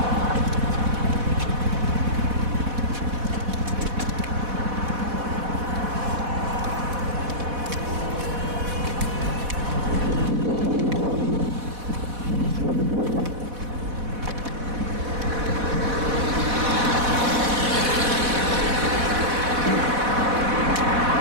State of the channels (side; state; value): left; late; 4.1 ms